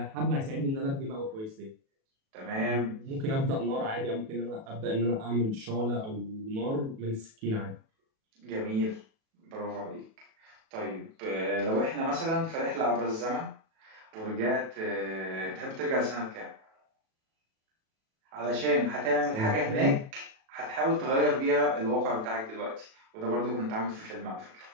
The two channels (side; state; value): left; late; 37 ms